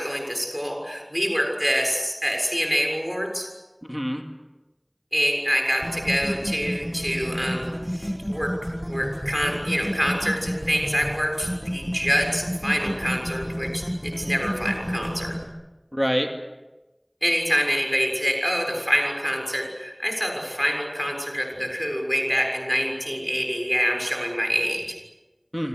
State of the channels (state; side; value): identical; both; correlation 1.00